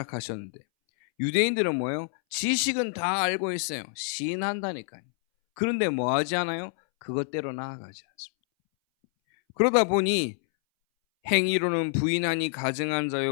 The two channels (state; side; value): silent; right; 60 dB below the other